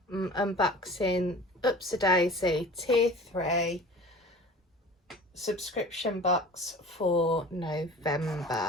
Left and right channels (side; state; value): both; normal; correlation 0.41